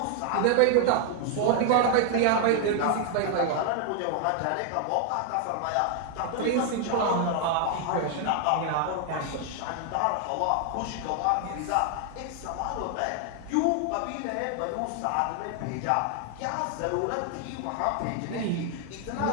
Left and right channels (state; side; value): different; both; correlation 0.00